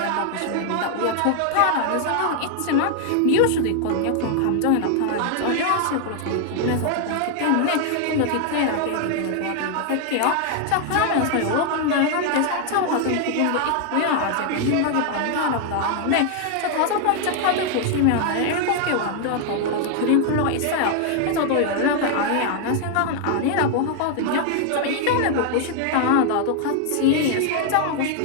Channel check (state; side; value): different; both; correlation 0.00